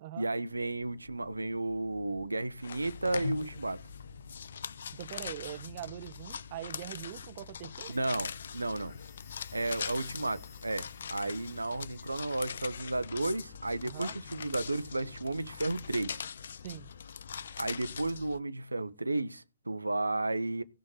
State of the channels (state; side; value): inverted; both; correlation -0.91